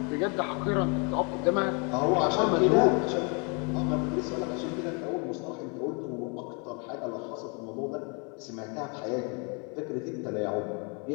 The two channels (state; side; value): quieter; right; 34.7 dB